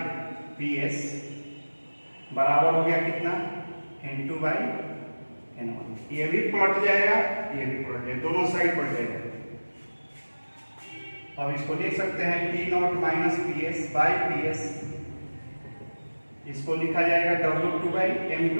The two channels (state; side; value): inverted; both; correlation -1.00